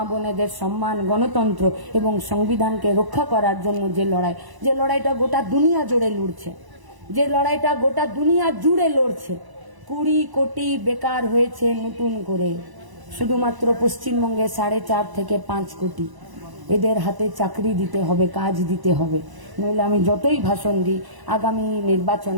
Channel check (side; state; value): left; late; 1.0 ms